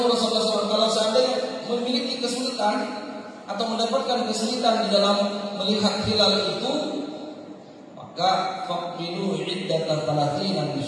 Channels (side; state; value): both; identical; correlation 1.00